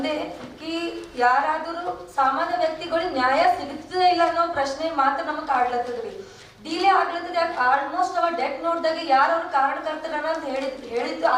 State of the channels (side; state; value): both; identical; correlation 1.00